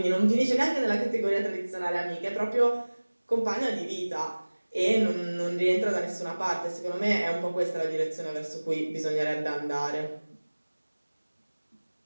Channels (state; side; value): inverted; both; correlation -1.00